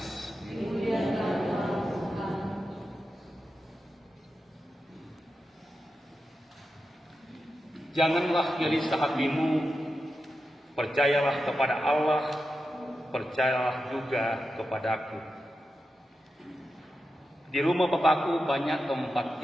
Janganlah gelisah hatimu, percayalah kepada Allah, percayalah juga kepadaku. Di rumah Bapakku banyak tempat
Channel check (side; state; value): both; normal; correlation 0.90